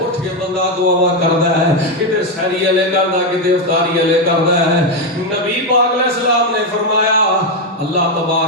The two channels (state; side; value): normal; both; correlation 0.06